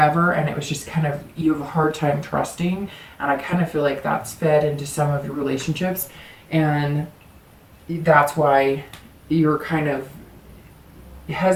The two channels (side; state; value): both; identical; correlation 1.00